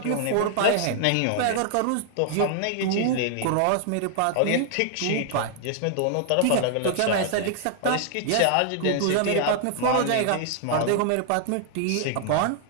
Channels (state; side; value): different; both; correlation 0.00